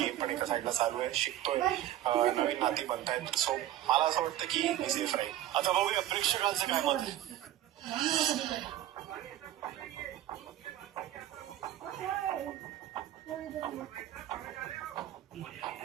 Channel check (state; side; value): quieter; left; 13.0 dB